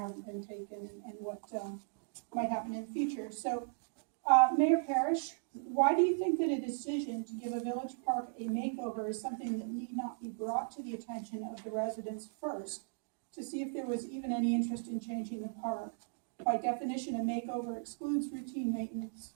been taken and what might happen in the future. So, Mayor Parrish, why do you think that a decision to give a village park a makeover is something that need not be brought to the attention of the residents first, to see if there was even any interest in changing the park? By definition, a makeover excludes routine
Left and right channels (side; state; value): left; silent; digital silence